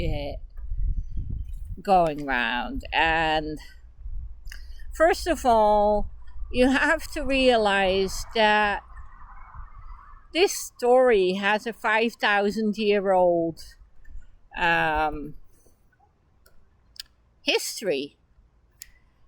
going around. And first of all, you have to realize that this story has a 5,000-year-old history,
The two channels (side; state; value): both; identical; correlation 1.00